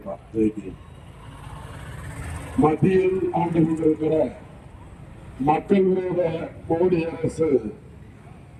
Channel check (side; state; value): both; identical; correlation 1.00